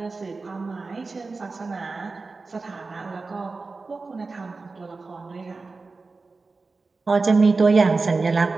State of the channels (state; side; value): quieter; left; 3.9 dB